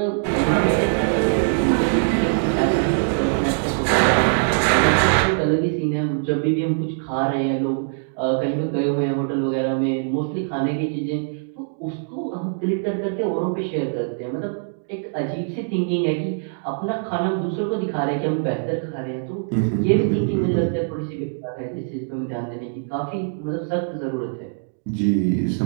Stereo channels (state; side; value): silent; left; digital silence